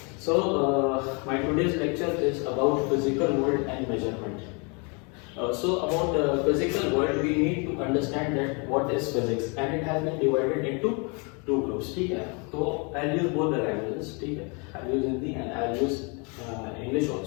So my today's lecture is about physical world and measurement. So about physical world, we need to understand that what is physics, and it has been divided into two groups. ठीक है, तो I'll use both the languages. ठीक है, I'll use Hindi and I'll use English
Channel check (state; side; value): quieter; right; 33.2 dB